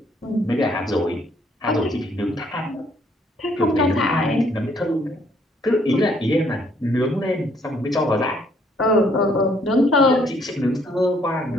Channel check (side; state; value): both; normal; correlation 0.66